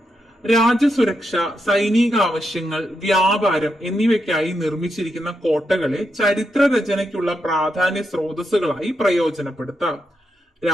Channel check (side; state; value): both; normal; correlation 0.84